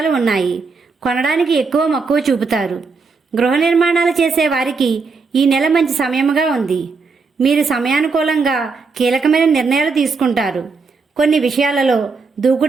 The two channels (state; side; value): quieter; left; 4.5 dB